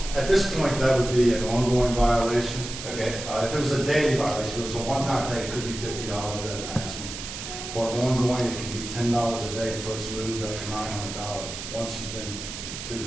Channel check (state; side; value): noise; right; hiss, 9 dB below the sound